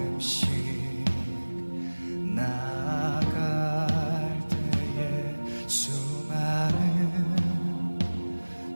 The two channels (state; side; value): inverted; both; correlation -1.00